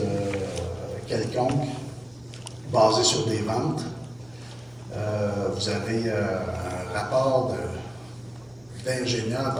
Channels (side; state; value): right; noise; hum, 29 dB below the sound